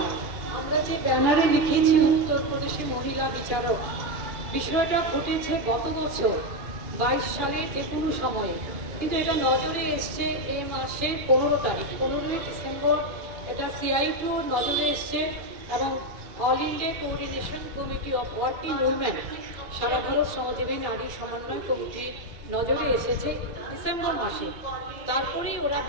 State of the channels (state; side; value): late; left; 2.9 ms